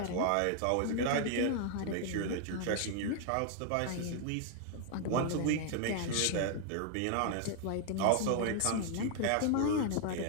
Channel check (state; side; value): different; both; correlation 0.00